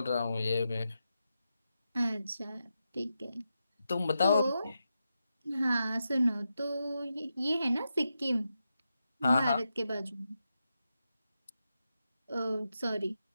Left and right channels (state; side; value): inverted; both; correlation -0.88